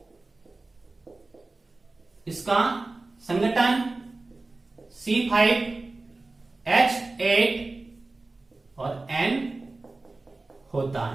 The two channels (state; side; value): quieter; left; 3.3 dB